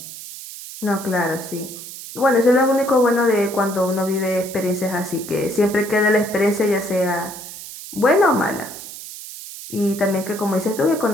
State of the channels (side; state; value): right; noise; hiss, 12 dB below the sound